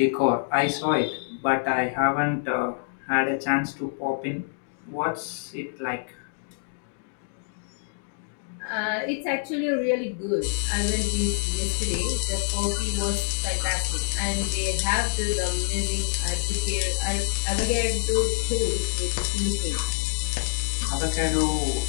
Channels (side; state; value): right; silent; digital silence